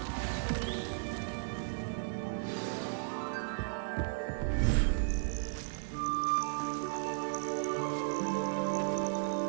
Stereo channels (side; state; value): left; silent; digital silence